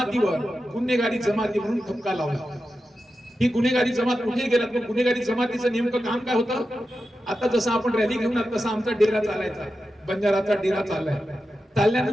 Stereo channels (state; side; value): normal; both; correlation 0.91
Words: गुन्हेगारी जमाती म्हणून ठपका लावला. ही गुन्हेगारी जमात कुठे गेला, तर गुन्हेगारी जमातीचं नेमकं काम काय होतं? आता जसं आपण रॅली घेऊन तसा आमचा डेरा चालायचा, बंजाराचा डेरा चाललाय.